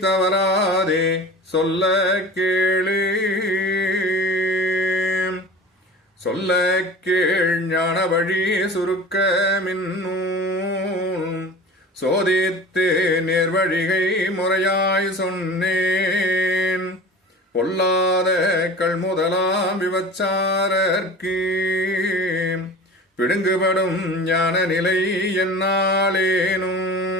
தவறாதே சொல்ல கேளு. சொல்ல கேள் ஞான வழி சுருக்க மின்னூல் சோதித்து நேர்வழிகை முறையாய் சொன்னேன். பொல்லாத கள்முதலாம் விபச்சாரர்க்கு பிடுங்குபடும் ஞான நிலை என்னாலேனும்.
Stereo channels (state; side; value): normal; both; correlation 0.38